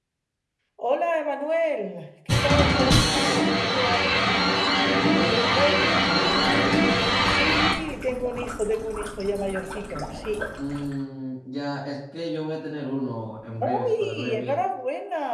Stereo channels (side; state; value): both; identical; correlation 1.00